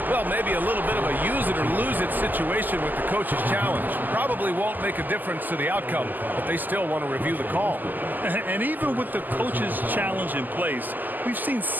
well, maybe a little bit of a use-it-or-lose-it situation with the coach's challenge. Probably won't make a difference to the outcome, but they still want to review the call. And even with the coach's challenge in place, we've seen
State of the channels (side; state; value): left; late; 0.086 ms